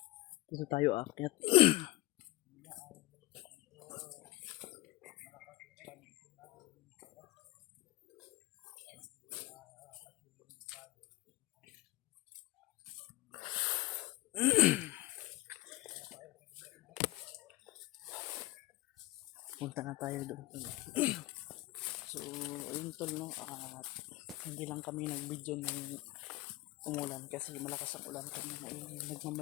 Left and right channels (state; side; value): quieter; right; 19.4 dB